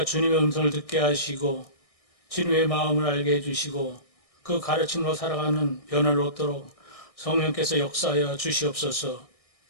주님의 음성을 듣게 하시고 주님의 마음을 알게 해주시고 그 가르침으로 살아가는 변화를 얻도록 성령께서 역사하여 주시옵소서.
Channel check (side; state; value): right; late; 1.6 ms